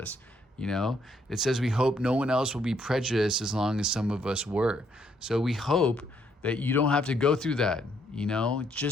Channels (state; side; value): normal; both; correlation 0.71